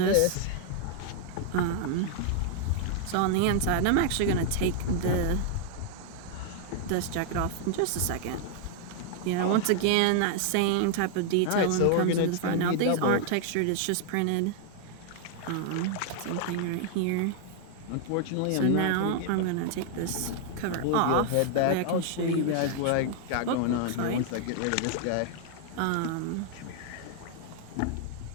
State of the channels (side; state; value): both; different; correlation 0.00